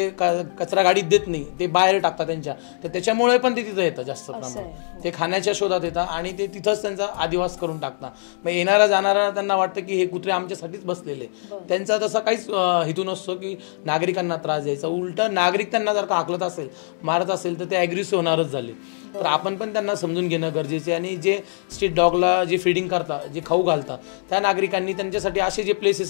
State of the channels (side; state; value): right; silent; digital silence